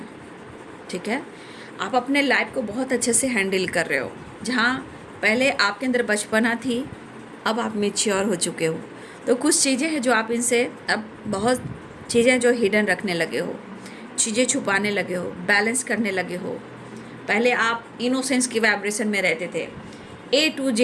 ठीक है, आप अपने लाइफ को बहुत अच्छे से हैंडल कर रहे हो। जहाँ पहले आपके अंदर बचपना थी, अब आप मैच्योर हो चुके हो। तो कुछ चीज़ें हैं जो आप इनसे, अब बहुत चीज़ें जो हिडन रखने लगे हो, चीज़ें छुपाने लगे हो, बैलेंस करने लगे हो। पहले आप इनोसेंस की वाइब्रेशन में रहते थे, ए टू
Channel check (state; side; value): identical; both; correlation 1.00